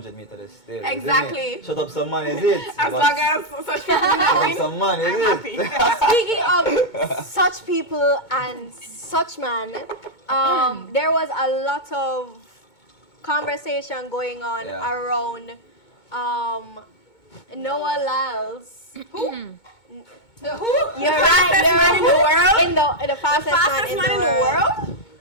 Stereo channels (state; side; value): late; right; 2.2 ms